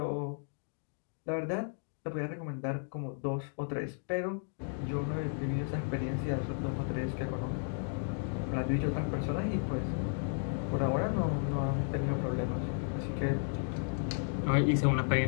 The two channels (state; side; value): silent; right; 55 dB below the other